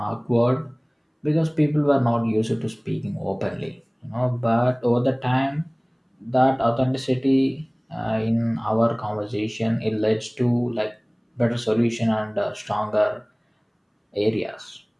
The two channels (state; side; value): identical; both; correlation 1.00